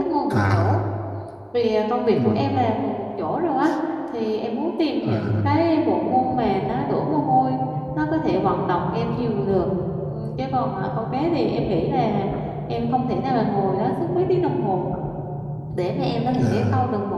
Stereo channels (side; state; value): both; identical; correlation 1.00